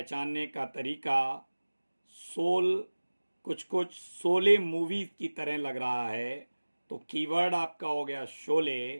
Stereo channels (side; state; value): both; inverted; correlation -1.00